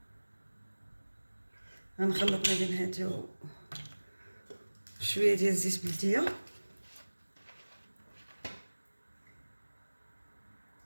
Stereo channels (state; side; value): inverted; both; correlation -1.00